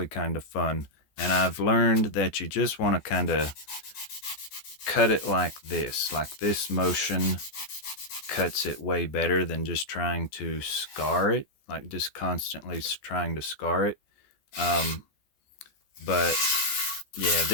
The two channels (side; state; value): right; late; 14 ms